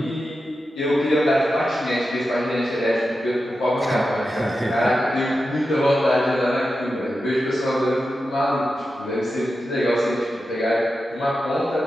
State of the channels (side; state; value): both; normal; correlation 0.90